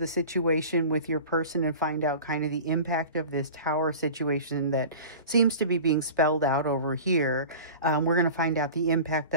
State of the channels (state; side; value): inverted; both; correlation -0.37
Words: situation with your person and find out kind of the impact of this tower situation that seems to be being spelled out over here. We're going to find out the impact